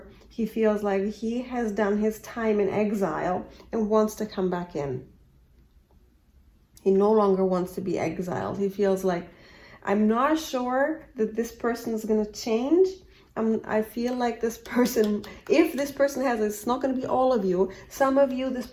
He feels like he has done his time in exile and wants to come back in. He no longer wants to be exiled. He feels like, I'm not sure that this person is going to change. I feel like this person, if this person has, it's not going to be all of you. Some of you, this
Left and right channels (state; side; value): identical; both; correlation 1.00